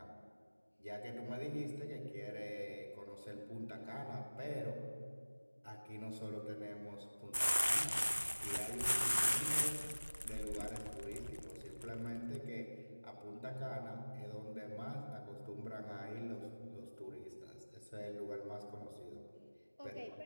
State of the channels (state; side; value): inverted; both; correlation -1.00